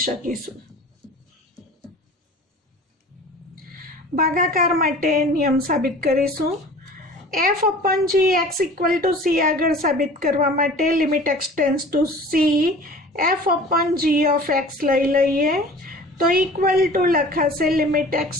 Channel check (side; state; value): both; normal; correlation 0.43